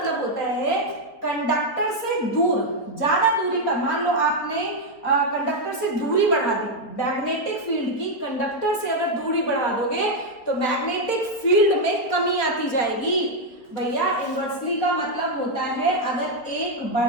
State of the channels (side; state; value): right; late; 4.5 ms